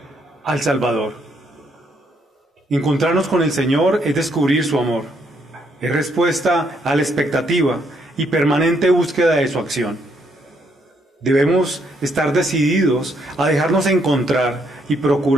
al Salvador. Encontrarnos con el Señor es descubrir su amor, es respuesta a la expectativa y permanente búsqueda de su acción. Debemos estar decididos a dejarnos encontrar y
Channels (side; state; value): both; normal; correlation 0.72